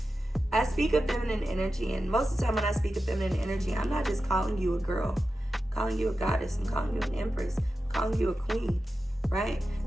I speak of feminine energy, and most of the time when I speak of feminine energy, I'm not just calling you a girl. I'm calling you a goddess. I'm calling you an empress. I'm calling you a queen, right?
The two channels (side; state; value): both; normal; correlation 0.92